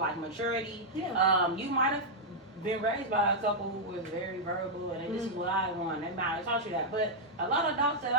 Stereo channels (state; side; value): normal; both; correlation -0.04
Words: maturity. Yeah. You might have been raised by a couple who was very verbal and this is what I want. They might have taught you that. But a lot of adults that